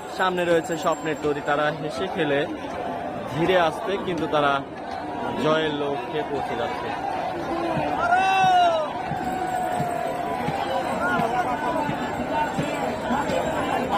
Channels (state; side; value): identical; both; correlation 1.00